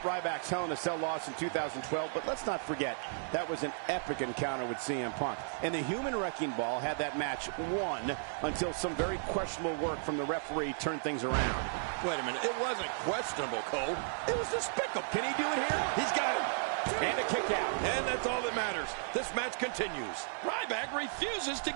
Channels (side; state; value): left; silent; digital silence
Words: Hell in a Cell loss in 2012, but let's not forget, that was an epic encounter with CM Punk. And the Human Wrecking Ball had that match won until some very questionable work from the referee turned things around. Wait a minute, it wasn't questionable, Cole. It was despicable. Can he do it here? He's got it. And a kick out. And that's all that matters. This match continues. Ryback refuses to